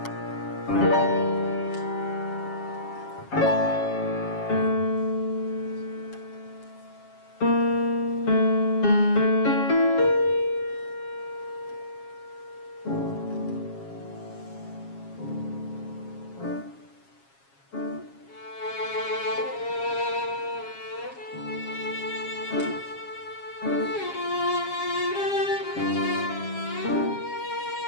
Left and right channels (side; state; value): right; late; 7.3 ms